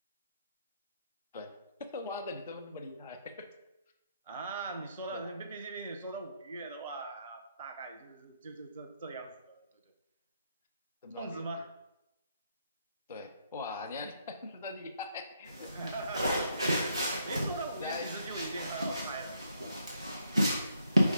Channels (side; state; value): both; inverted; correlation -0.75